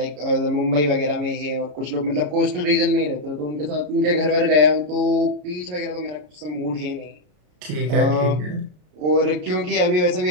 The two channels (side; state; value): left; late; 34 ms